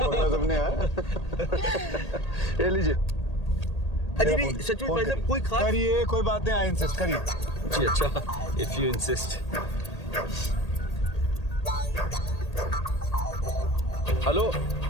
तुमने यार। ये लीजिए। अजी नहीं, सच में भाई साहब कोई खास करिए, कोई बात नहीं, आई इंसिस्ट, करिए। जी अच्छा, इफ यू इंसिस्ट। हेलो,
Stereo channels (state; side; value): late; right; 1.8 ms